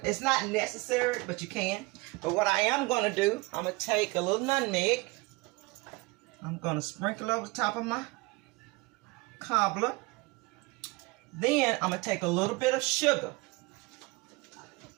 It's not necessary, but you can. But what I am going to do, I'm going to take a little nutmeg. I'm going to sprinkle over the top of my cobbler. Then I'm going to take a little bit of sugar.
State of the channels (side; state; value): left; quieter; 24.5 dB